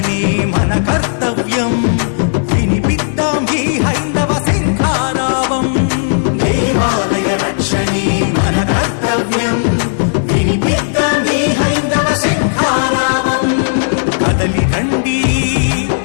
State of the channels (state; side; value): silent; right; digital silence